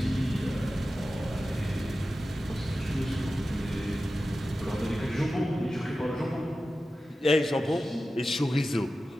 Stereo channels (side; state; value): both; normal; correlation 0.94